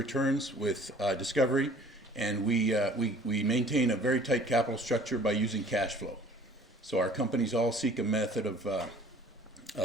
with discovery, and we maintain a very tight capital structure by using cash flow. So our companies all seek a method of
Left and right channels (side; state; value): both; normal; correlation 0.51